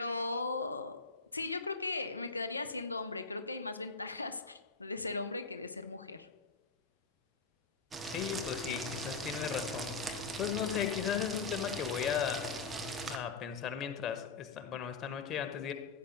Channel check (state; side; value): quieter; right; 4.4 dB